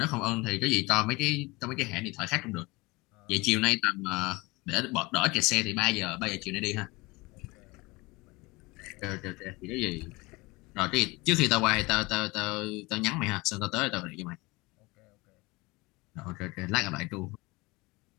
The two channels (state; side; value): quieter; right; 23.6 dB